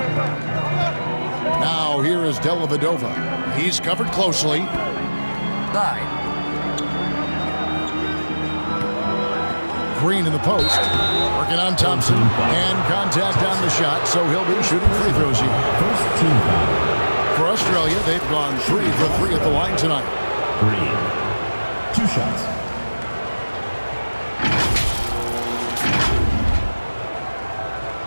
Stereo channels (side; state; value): both; inverted; correlation -1.00